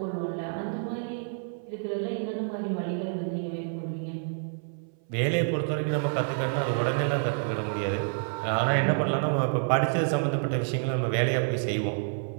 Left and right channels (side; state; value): left; silent; 57 dB below the other